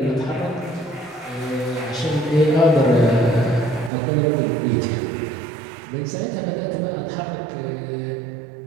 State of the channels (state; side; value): drops out; left; at 3.9 s